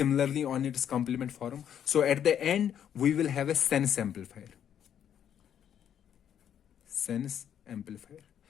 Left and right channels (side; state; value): right; quieter; 9.3 dB